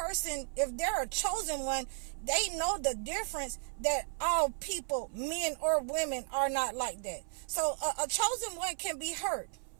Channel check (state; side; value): silent; left; 55 dB below the other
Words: if they're a chosen one, they know the difference that all people, men or women, are not like that. So a chosen one can be hurt,